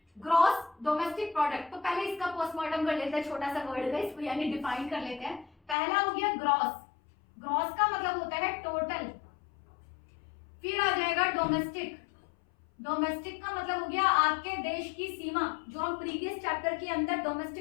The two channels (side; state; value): right; drops out; at 5.8 s